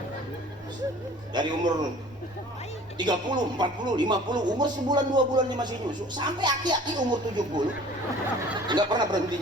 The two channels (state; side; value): normal; both; correlation 0.48